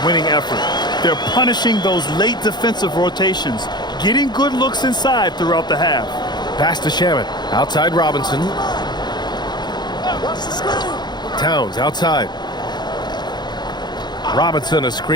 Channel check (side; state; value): right; late; 0.21 ms